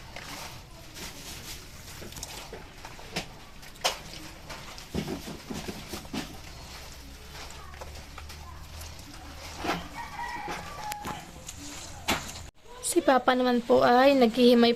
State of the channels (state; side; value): identical; both; correlation 1.00